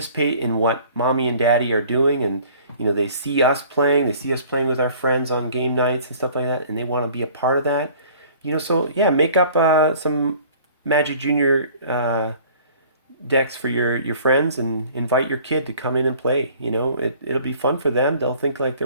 in what mommy and daddy are doing, and you know, they see us playing with our friends on game nights and stuff like that, and they want to be a part of that. You know, so yeah, make up some Magic Junior decks for your friends and invite your kid to come in and play. You know, it'll be fun for them. They'll think like they're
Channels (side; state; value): both; inverted; correlation -0.51